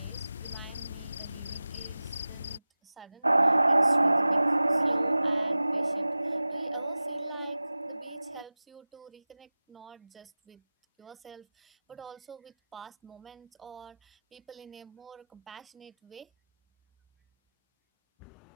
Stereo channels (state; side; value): inverted; both; correlation -0.97